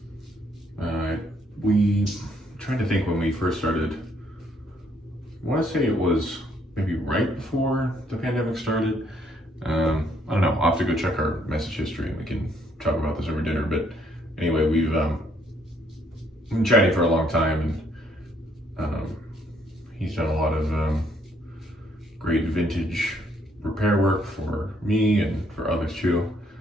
We trying to think when we first started. I want to say it was maybe right before the pandemic started. I don't know. I'll have to go check our message history and we can talk about this over dinner. But anyway, we've been chatting for a long time, and he's done a lot of great vintage repair work for me and for others too.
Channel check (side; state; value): both; normal; correlation 0.68